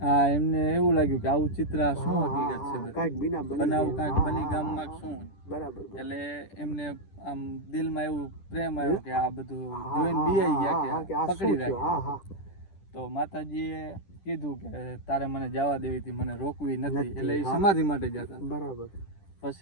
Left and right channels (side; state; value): right; late; 10 ms